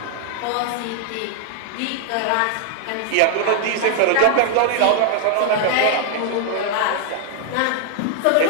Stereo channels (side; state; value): both; different; correlation 0.00